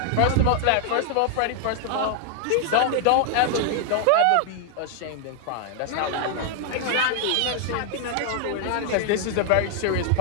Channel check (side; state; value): both; different; correlation 0.00